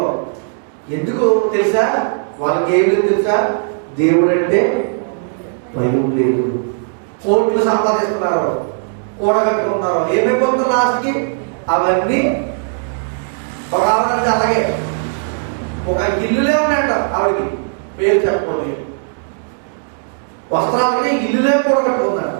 ఎందుకు తెలుసా? వాళ్ళకి ఏం లేదు తెలుసా? దేవుడు అంటే భయం లేదు. కోట్లు సంపాదిస్తున్నారు, కూడగట్టుకుంటున్నారు, ఏమైపోతున్నారు లాస్ట్కి? అవన్నీ ఒక ఆవిడ అలాగే ఒక ఇల్లులే ఉన్నాయంట ఆవిడకి, పేరు చెప్పకూడదు. వస్త్రాలకి ఇల్లులే కూడగట్టుకుందంట.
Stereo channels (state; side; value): silent; left; digital silence